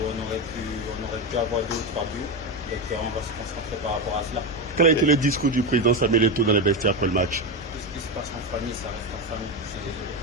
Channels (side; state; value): both; normal; correlation 0.14